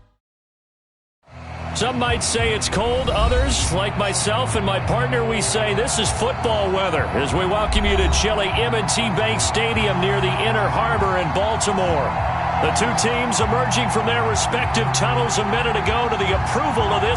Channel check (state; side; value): identical; both; correlation 1.00